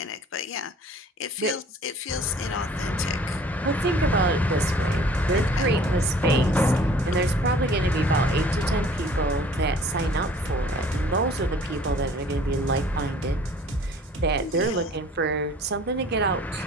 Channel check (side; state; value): both; normal; correlation 0.51